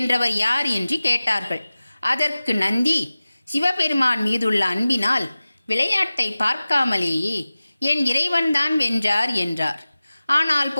யார் என்று கேட்டார்கள். அதற்கு நந்தி, சிவபெருமான் மீதுள்ள அன்பினால் விளையாட்டை பார்க்காமலேயே என் இறைவன்தான் வென்றார் என்றார். ஆனால்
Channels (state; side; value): inverted; both; correlation -0.97